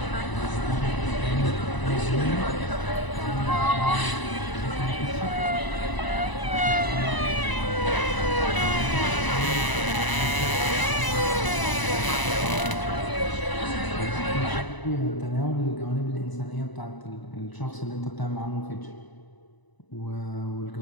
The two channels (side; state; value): right; late; 1.0 ms